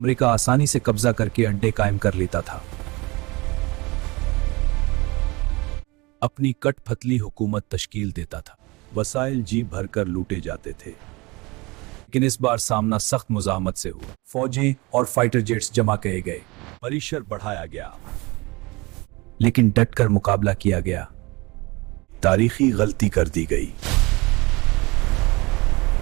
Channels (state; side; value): quieter; left; 24.1 dB